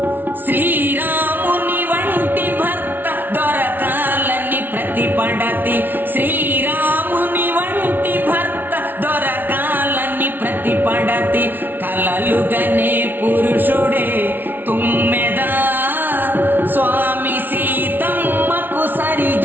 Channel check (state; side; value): late; left; 0.093 ms